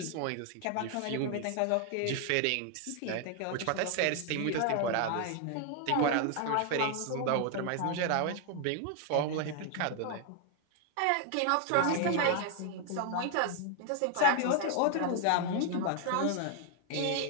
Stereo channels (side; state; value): both; different; correlation 0.00